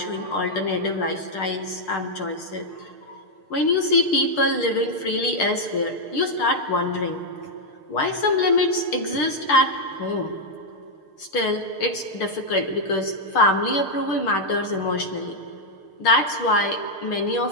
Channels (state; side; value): late; right; 6.6 ms